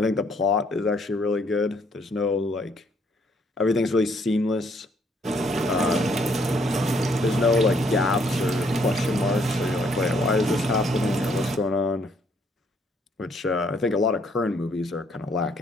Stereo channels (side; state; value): both; normal; correlation 0.67